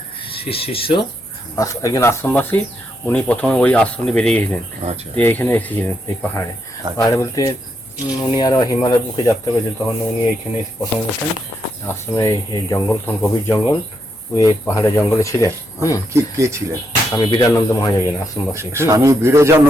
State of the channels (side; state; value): both; normal; correlation 0.80